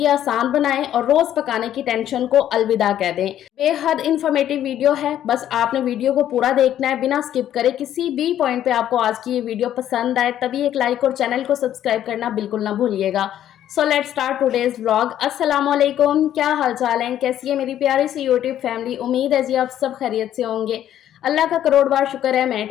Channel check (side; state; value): right; quieter; 11.3 dB